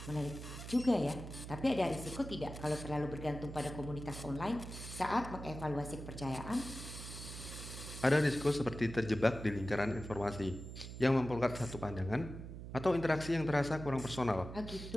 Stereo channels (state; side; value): noise; right; hum, 10 dB below the sound